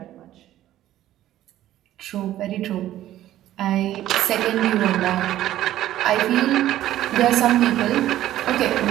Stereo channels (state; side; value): quieter; left; 13.4 dB